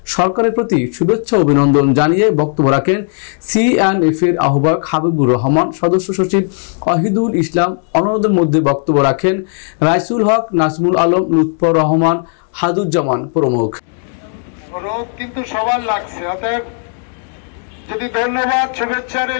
সরকারের প্রতি শুভেচ্ছা অভিনন্দন জানিয়ে বক্তব্য রাখেন C&F এর আহ্বায়ক হাবিবুর রহমান, সদস্য সচিব ওয়াহিদুল ইসলাম। অন্যদের মধ্যে বক্তব্য রাখেন রাইসুল হক, নাজমুল আলম, লুৎফর রহমান, হাদুজ্জামান প্রমুখ। রোদ কিন্তু সবার লাগছে, অতএব যদি ধন্যবাদ শুভেচ্ছা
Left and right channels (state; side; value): silent; right; 55 dB below the other